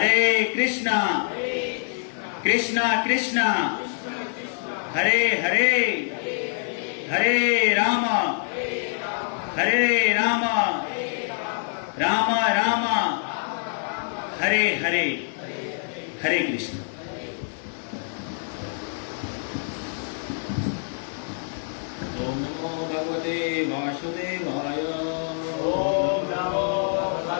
कृष्णा कृष्णा कृष्णा हरे हरे हरे राम राम राम हरे हरे। हरे कृष्ण। ओम नमो भगवते वासुदेवाय। ओम नमो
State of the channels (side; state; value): right; silent; 60 dB below the other